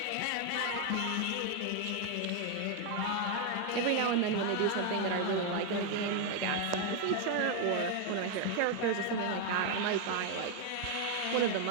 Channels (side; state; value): both; different; correlation 0.01